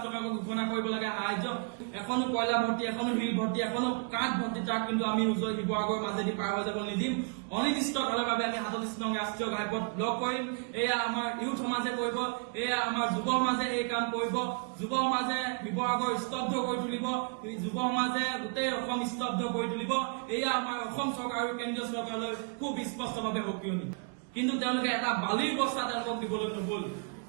টকা ঘোষণা কৰিব লাগে সাহায্য এখনো কয়লা ভৰ্তি এখনো শিল ভৰ্তি এখনো কাঠ ভৰ্তি তাক কিন্তু আমি উজনি শিৱসাগৰৰ মাজেদি পাৰ হৈ যাব নিদিম অনিৰ্দিষ্টকালৰ বাবে আমি 47 নং ৰাষ্ট্ৰীয় ঘাইপথ ব্লক কৰিম এয়া আমাৰ ইউথ সমাজে কৰিব এয়া আমাৰ যুৱ সমাজে এই কাম কৰিব যুৱ সমাজে শিৱসাগৰ স্তব্ধ কৰি তুলিব যুৱ সমাজে গোটেই অসম স্তব্ধ কৰি তুলিব এয়া আমাৰ অসম চৰকাৰ আৰু কেন্দ্ৰীয় চৰকাৰলৈ খুব স্পষ্টভাৱে সক্ৰিয়ণী কিন্তু তেওঁলোকে এটা বালিৰ বস্তা তেওঁলোকক দিবলৈ নগ'ল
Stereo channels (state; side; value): quieter; left; 38.6 dB